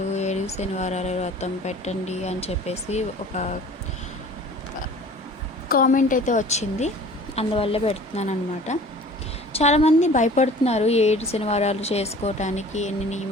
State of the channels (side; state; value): both; normal; correlation 0.46